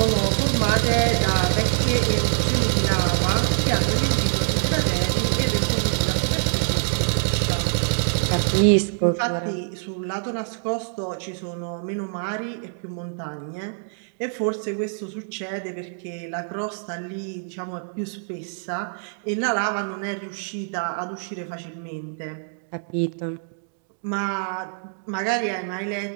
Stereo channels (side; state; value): left; silent; digital silence